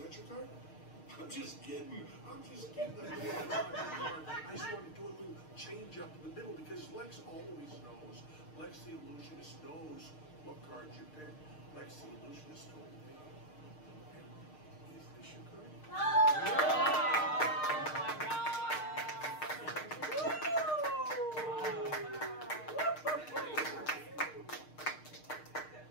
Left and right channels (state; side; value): late; right; 6.5 ms